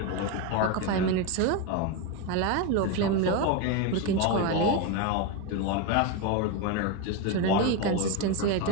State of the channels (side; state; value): both; different; correlation 0.03